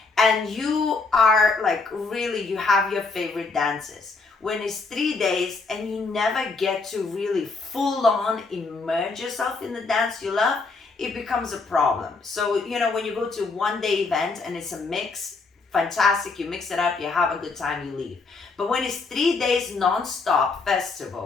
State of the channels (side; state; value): right; quieter; 4.1 dB